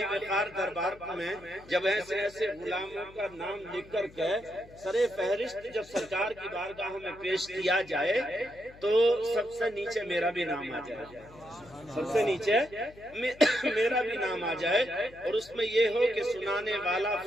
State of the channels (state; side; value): noise; left; hum, 22 dB below the sound